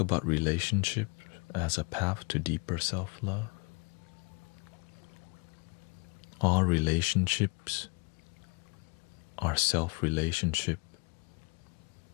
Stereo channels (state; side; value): quieter; right; 30.8 dB